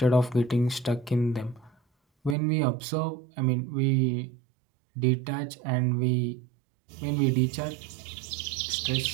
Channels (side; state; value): left; drops out; at 2.4 s